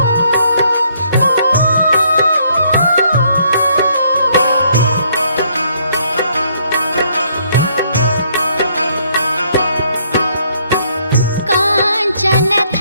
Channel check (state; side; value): inverted; both; correlation -0.68